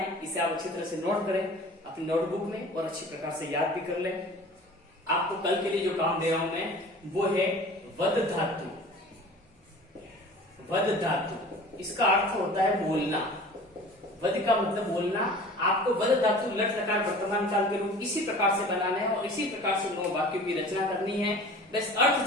इसे आप अच्छी तरह से नोट करें अपनी नोटबुक में और अच्छी प्रकार से याद भी कर लें। आपको कल के लिए जो काम दे रहा हूं मैं वो है वद धातु। वद धातु इसका अर्थ होता है बोलना। वद का मतलब बोलना। आपको वद धातु लट लकार वर्तमान काल के रूप इसी प्रकार से बनाना है और इसी प्रकार से 9 वाक्यों की रचना करनी है। बस अर्थ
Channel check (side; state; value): both; normal; correlation 0.42